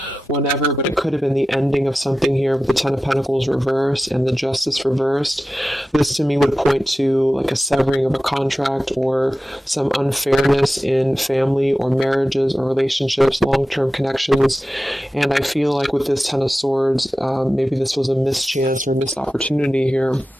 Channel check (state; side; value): normal; both; correlation 0.94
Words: whenever, but it could have been the ending of something here with the 10 of Pentacles reversed and the Justice reversed. This to me would point to like a severing of a contract or some unfairness in family or marriages or relationships, long-term connections. And I feel like with this 10 of Swords, maybe this was a mischance or missed opportunity here.